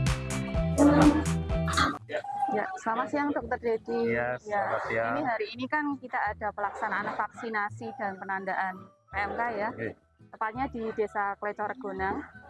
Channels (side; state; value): both; identical; correlation 1.00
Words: Ya, selamat siang Dokter Dedi. Iya, selamat siang. Ini hari ini kan kita ada pelaksanaan vaksinasi dan penandaan PMK ya. Tepatnya di Desa Klecoregonang.